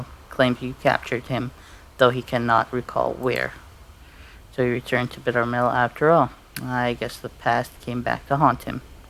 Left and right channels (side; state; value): both; identical; correlation 1.00